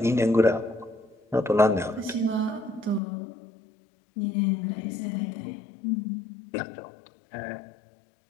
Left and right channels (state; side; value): drops out; right; at 3.0 s